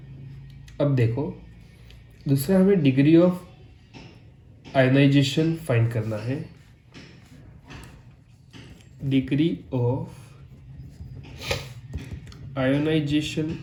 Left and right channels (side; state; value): both; identical; correlation 1.00